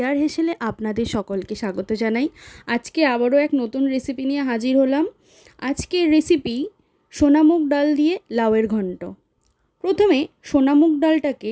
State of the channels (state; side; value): identical; both; correlation 1.00